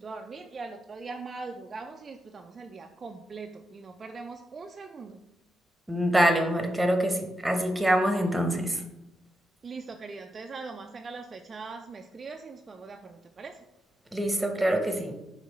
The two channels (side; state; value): both; normal; correlation 0.87